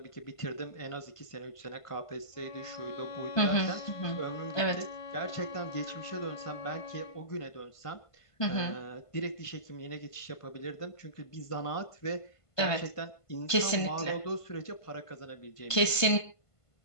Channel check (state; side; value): late; right; 1.5 ms